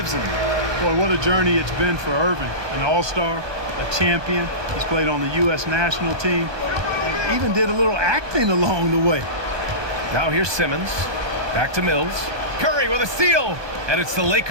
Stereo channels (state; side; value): late; left; 1.2 ms